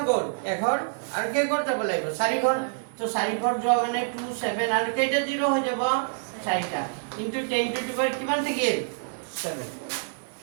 গল 1 ঘৰ আৰু কে ঘৰ যাব লাগিব 4 ঘৰ তো 4 ঘৰ যোৱা মানে 2 7 আৰু কেইটা 0 হৈ যাব 4টা ইনটু 10 টু দি পাৱাৰ কিমান থাকিল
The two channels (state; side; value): silent; left; 58 dB below the other